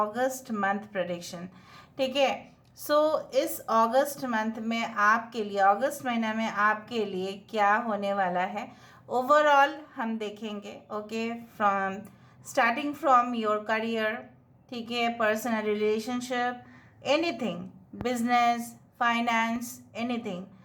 मंथ प्रेडिक्शन। ठीक है, सो इस अगस्त मंथ में आपके लिए, अगस्त महीना में आपके लिए क्या होने वाला है ओवरऑल हम देखेंगे। Okay, from starting from your career, ठीक है, personal relationship, anything, business, finance, anything,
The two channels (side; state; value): both; identical; correlation 1.00